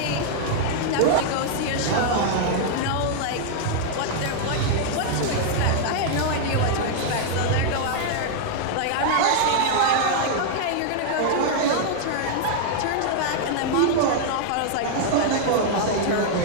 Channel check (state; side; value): different; both; correlation -0.01